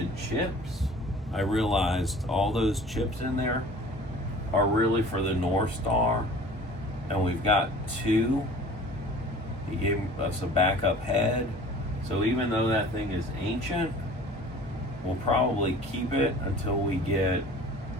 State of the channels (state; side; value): normal; both; correlation 0.45